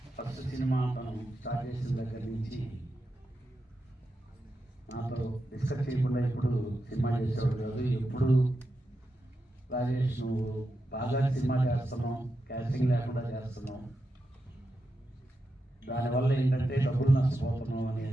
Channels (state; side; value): normal; both; correlation 0.88